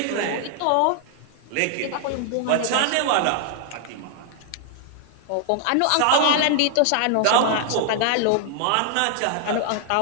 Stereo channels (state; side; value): different; both; correlation 0.00